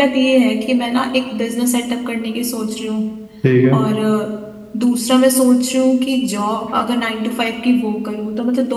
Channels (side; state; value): both; identical; correlation 1.00